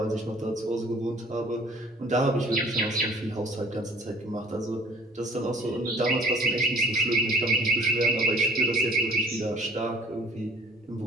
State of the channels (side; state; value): both; normal; correlation 0.53